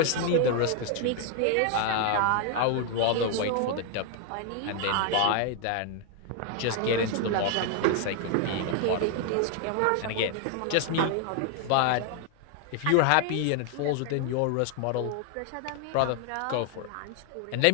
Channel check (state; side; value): different; both; correlation 0.00